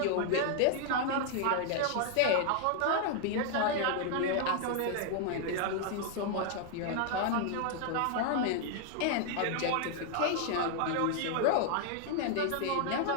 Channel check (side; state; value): both; different; correlation 0.00